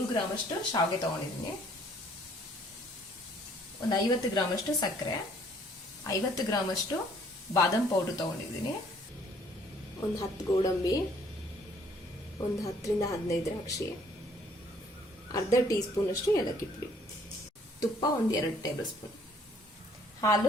ಗ್ರಾಮ್ ಅಷ್ಟು ಶಾವಿಗೆ ತಗೊಂಡಿದ್ದೀನಿ, ಒಂದು 50 ಗ್ರಾಮ್ ಅಷ್ಟು ಸಕ್ಕರೆ, 50 ಗ್ರಾಮ್ ಅಷ್ಟು ಬಾದಾಮ್ ಪೌಡರ್ ತಗೊಂಡಿದ್ದೀನಿ, ಒಂದು 10 ಗೋಡಂಬಿ, ಒಂದು 10 ರಿಂದ 15 ದ್ರಾಕ್ಷಿ, ಅರ್ಧ ಟೀ ಸ್ಪೂನ್ ಅಷ್ಟು ಏಲಕ್ಕಿ ಪುಡಿ, ತುಪ್ಪ ಒಂದು 2 ಟೇಬಲ್ ಸ್ಪೂನ್,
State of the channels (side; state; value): both; normal; correlation 0.61